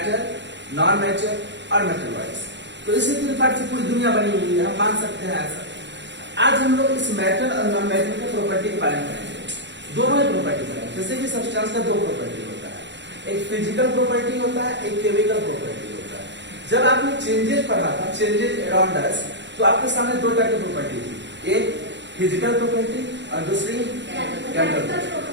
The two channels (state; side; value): late; left; 0.52 ms